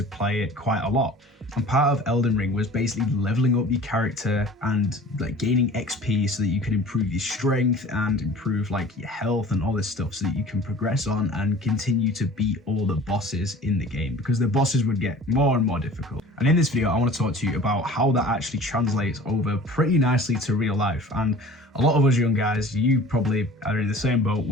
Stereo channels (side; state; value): both; normal; correlation 0.44